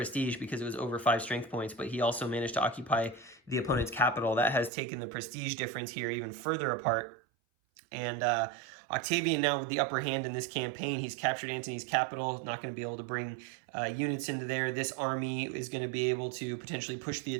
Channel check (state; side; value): drops out; left; at 4.7 s